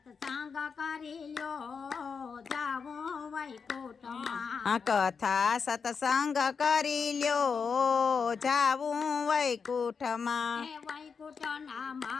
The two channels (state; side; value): quieter; right; 5.7 dB